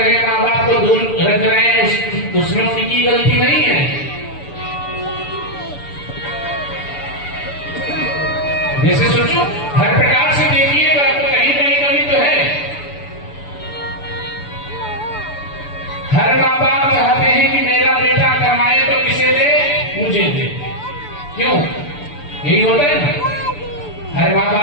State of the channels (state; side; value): late; right; 6.9 ms